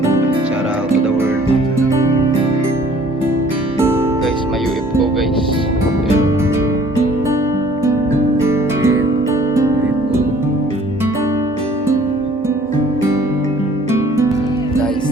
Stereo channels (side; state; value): both; normal; correlation 0.55